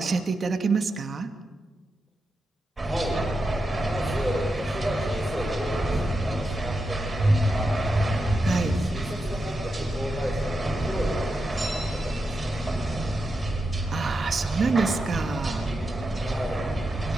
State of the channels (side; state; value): both; normal; correlation 0.88